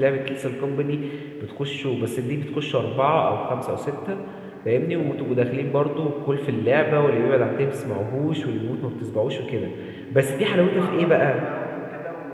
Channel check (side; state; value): both; identical; correlation 1.00